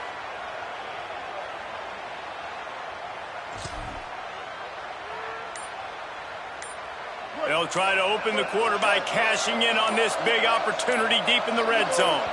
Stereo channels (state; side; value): identical; both; correlation 1.00